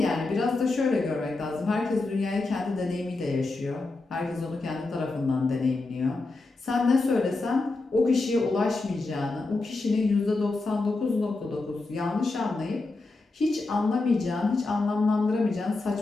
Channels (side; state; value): right; quieter; 3.4 dB